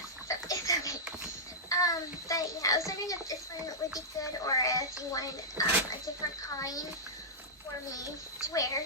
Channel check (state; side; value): normal; both; correlation -0.12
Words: so it's okay. But yeah, I was wondering if this one would be good, or if you wanted a different kind for me to wear.